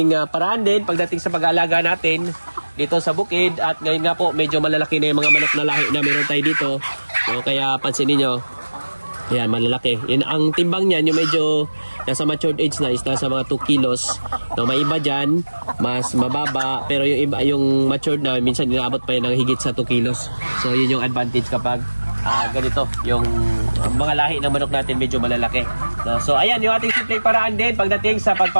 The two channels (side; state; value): both; inverted; correlation -1.00